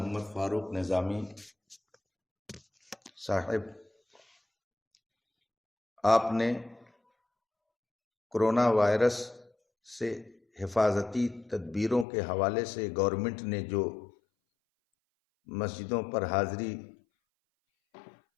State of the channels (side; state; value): right; drops out; at 12.1 s